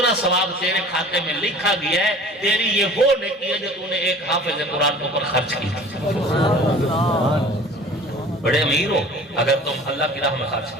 ثواب تیرے کھاتے میں لکھا گیا ہے۔ تیری یہ وہ نیکی ہے جو تو نے ایک حافظ قرآن کے اوپر خرچ کی۔ بڑے امیر ہو اگر تم اللہ کی راہ میں خرچ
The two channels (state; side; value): normal; both; correlation 0.44